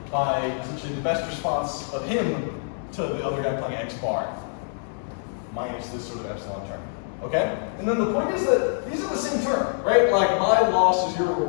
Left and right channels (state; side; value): silent; right; 62 dB below the other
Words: by essentially the best response of him to the other guy playing X bar, minus this sort of epsilon term, okay? And then the point is that these are the same term, right? Like, my loss is your